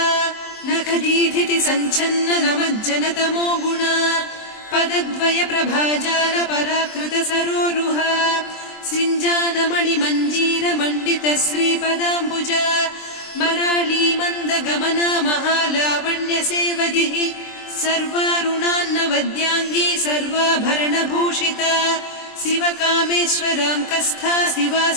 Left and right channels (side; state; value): right; late; 23 ms